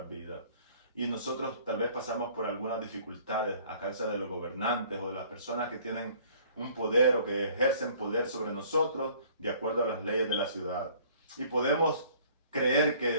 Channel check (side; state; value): both; inverted; correlation -0.55